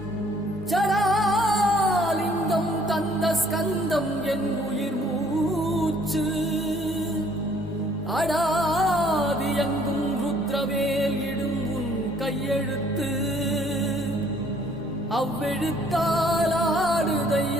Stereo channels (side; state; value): both; normal; correlation 0.61